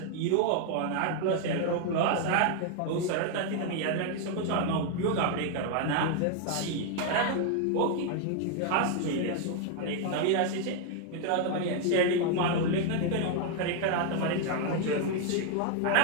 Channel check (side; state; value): both; different; correlation 0.00